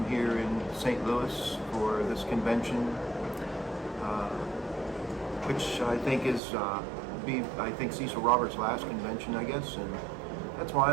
here in St. Louis for this convention, which I think is Cecil Roberts' last convention, I guess, and that's why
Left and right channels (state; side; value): drops out; left; at 6.4 s